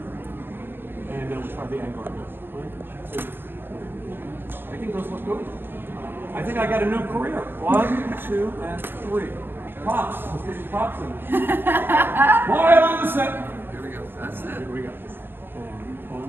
And then we'll try the angle. 1, 2. I think those look good. I think I got a new career. 1, 2, and 3. Props. Let's get some props in. Quiet on the set. Here we go. That's it. Here we go. And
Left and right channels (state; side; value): late; left; 0.10 ms